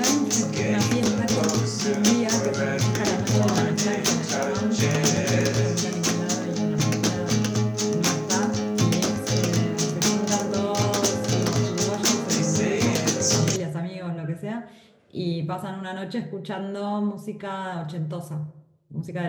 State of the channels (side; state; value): both; identical; correlation 1.00